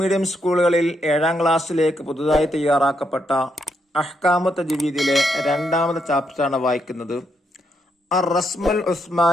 സ്കൂളുകളിൽ 7ാം ക്ലാസ്സിലേക്ക് പുതുതായി തയ്യാറാക്കപ്പെട്ട അഹ്കാമു തജ്വീദിലെ 2ാമത്തെ ചാപ്റ്ററാണ് വായിക്കുന്നത്. അർ റസ്മുൽ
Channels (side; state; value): both; normal; correlation 0.78